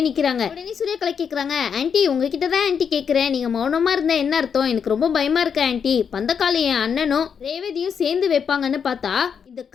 நிக்கிறாங்க. உடனே சூரியகலா கேக்குறாங்க, ஆண்டி உங்ககிட்ட தான் ஆண்டி கேக்குறேன், நீங்க மௌனமா இருந்தா என்ன அர்த்தம்? எனக்கு ரொம்ப பயமா இருக்கு ஆண்டி. பந்தக்கால என் அண்ணனும் ரேவதியும் சேர்ந்து வைப்பாங்கன்னு பார்த்தா இந்த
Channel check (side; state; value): right; quieter; 7.0 dB